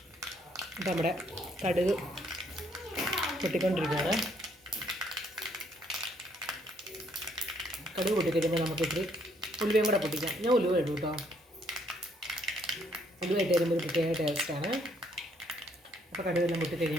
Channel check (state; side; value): normal; both; correlation 0.68